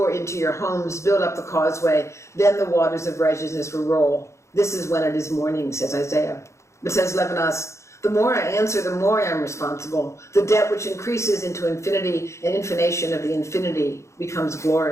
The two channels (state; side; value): late; right; 0.14 ms